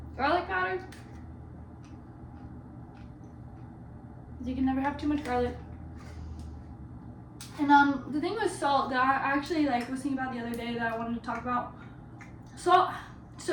Garlic powder. You can never have too much garlic. And the thing with salt that I actually was thinking about the other day that I wanted to talk about,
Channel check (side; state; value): both; identical; correlation 1.00